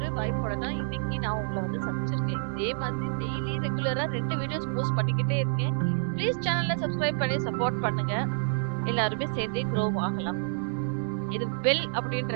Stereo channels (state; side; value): silent; left; digital silence